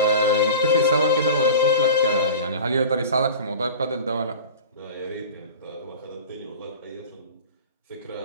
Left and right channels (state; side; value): inverted; both; correlation -0.36